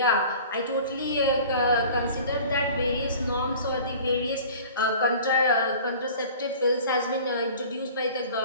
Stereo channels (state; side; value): inverted; both; correlation -0.44